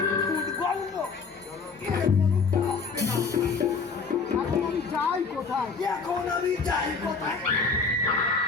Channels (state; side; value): quieter; right; 4.9 dB